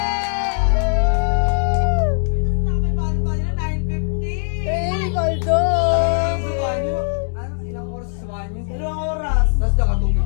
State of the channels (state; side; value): silent; right; digital silence